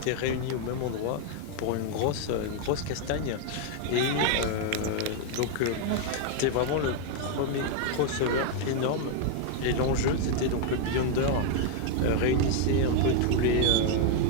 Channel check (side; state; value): both; different; correlation 0.00